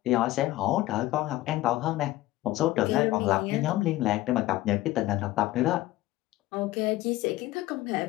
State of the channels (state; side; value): quieter; right; 16.7 dB